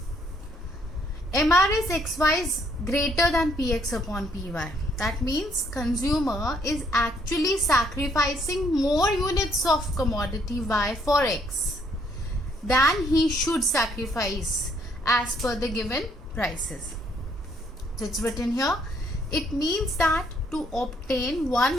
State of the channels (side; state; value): both; normal; correlation 0.69